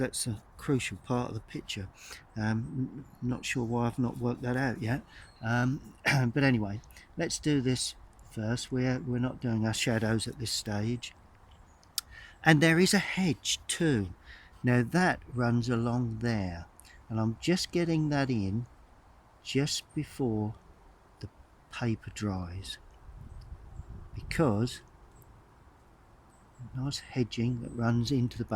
a crucial part of the picture. Not sure why I've not worked that out yet. But anyway, let's do this first. We're not doing our shadows at this stage. And there is a hedge too. Now that runs along there, and I'm just getting that in just before the paper dries, because nice hedging that runs into the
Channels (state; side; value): identical; both; correlation 1.00